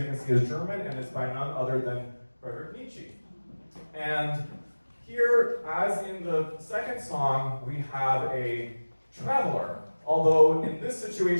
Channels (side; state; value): both; inverted; correlation -1.00